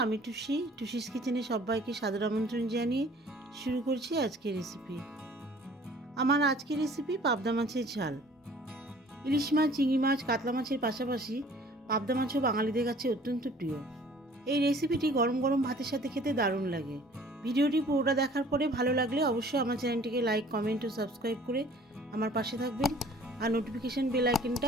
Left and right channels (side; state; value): both; normal; correlation 0.52